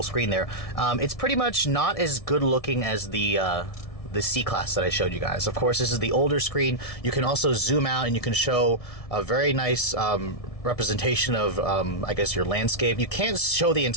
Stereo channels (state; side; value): late; right; 1.6 ms